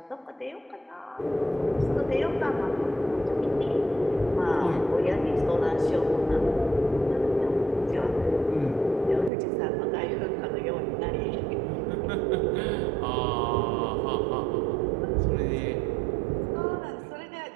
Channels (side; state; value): left; drops out; at 9.3 s